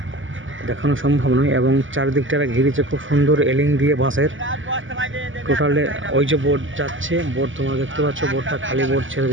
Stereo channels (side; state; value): left; late; 0.57 ms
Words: দেখানো সম্ভব নয়। এবং চারিদিকটা ঘিরেছে খুব সুন্দর এলিং দিয়ে বাঁশের। টোটালে ওই যে বোট যাচ্ছে, বোট তোমরা দেখতে পাচ্ছ, বোটটা খালি বোট ছেড়ে